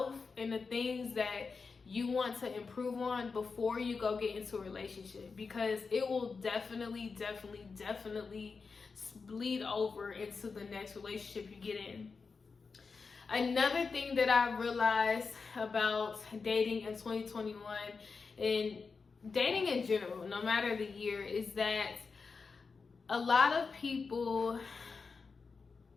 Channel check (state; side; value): quieter; right; 4.8 dB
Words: in the things that you want to improve on before you go get into a relationship, because it will definitely bleed over into the next relationship you get in. Another thing that I realized about dating in 2021 and dating in general, no matter the year, is that a lot of